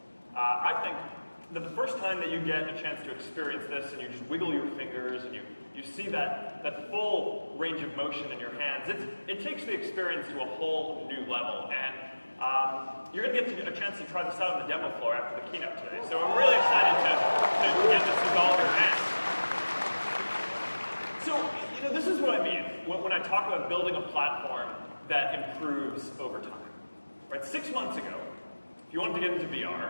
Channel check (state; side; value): inverted; both; correlation -1.00